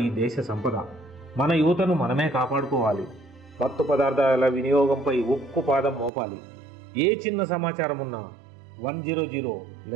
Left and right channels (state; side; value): drops out; left; at 6.1 s